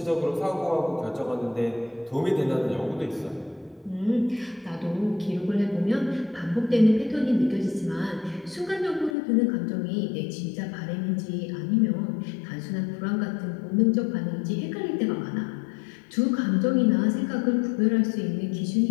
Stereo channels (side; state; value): right; drops out; at 9.1 s